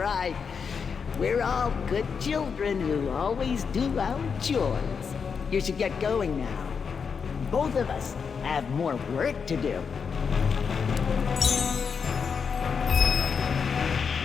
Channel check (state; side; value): quieter; right; 6.0 dB